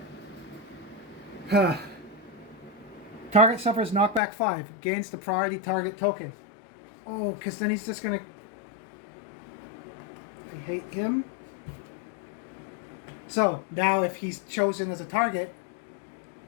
Target suffers knockback 5. Gains the priority target token. Oh, because then he's just going to... I hate him. So, now if he's chosen as a target,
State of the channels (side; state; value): right; drops out; at 4.2 s